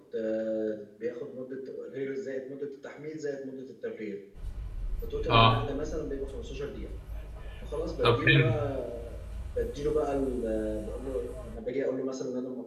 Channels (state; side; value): identical; both; correlation 1.00